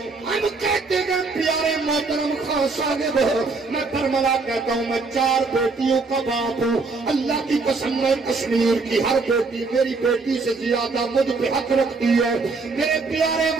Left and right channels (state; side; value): quieter; left; 4.0 dB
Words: ہم کہتے ہیں پیارے محترم خان صاحب میں برملا کہتا ہوں میں 4 بیٹیوں کا باپ ہوں، اللہ کی قسم میں کشمیر کی ہر بیٹی میری بیٹی سے زیادہ مجھ پہ حق رکھتی ہے۔ میرے پیارے